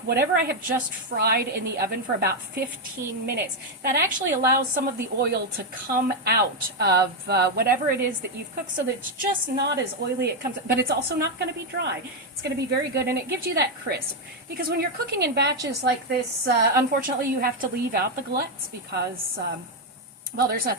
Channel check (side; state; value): both; normal; correlation 0.03